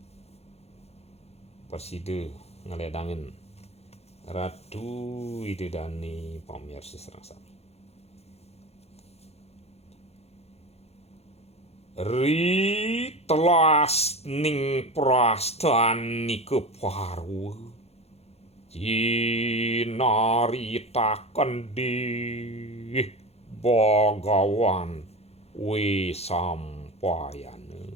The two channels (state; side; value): late; right; 0.30 ms